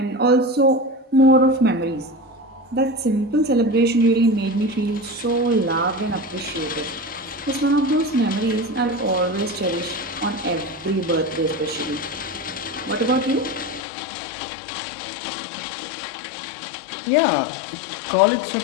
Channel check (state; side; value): drops out; right; at 13.9 s